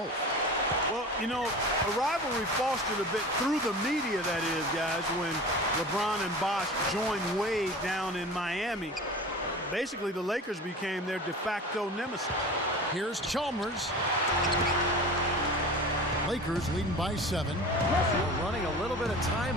Well, you know, a rivalry fostered a bit through the media, that is, guys, when LeBron and Bosch joined Wade down in Miami. Basically, the Lakers became their de facto nemesis. Here's Chalmers. Lakers leading by 7. Well, running a little bit of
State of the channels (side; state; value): both; normal; correlation 0.36